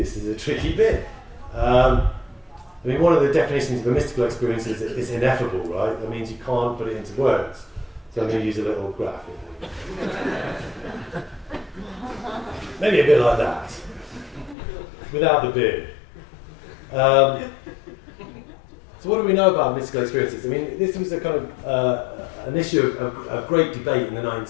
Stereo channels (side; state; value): right; drops out; at 14.6 s